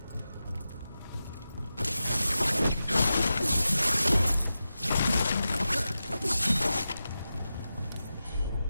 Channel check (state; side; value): inverted; both; correlation -0.92